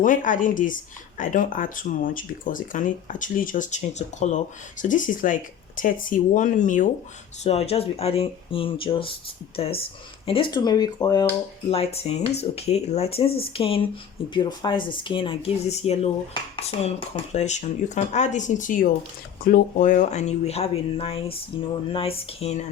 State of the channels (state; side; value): quieter; right; 8.6 dB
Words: adding this, I don't add too much because it can actually just change the color. So this is like 31 ml, so I'll just be adding in just this. And this turmeric oil lightens, okay, it lightens the skin, it beautifies the skin and gives this yellow tone complexion. You can add this into your glow oil and you will have a nice, nice skin